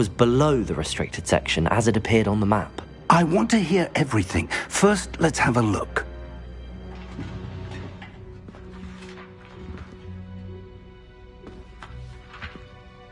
below the restricted section as it appeared on the map. I want to hear everything. First, let's have a look.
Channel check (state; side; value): identical; both; correlation 1.00